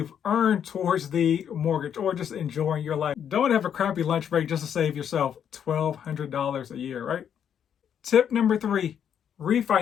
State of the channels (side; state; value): right; quieter; 8.7 dB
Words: earned towards the mortgage or just enjoying your life. Don't have a crappy lunch break just to save yourself $1,200 a year, right? Tip number 3,